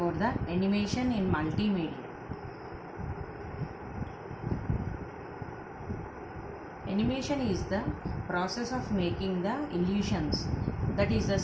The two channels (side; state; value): both; identical; correlation 1.00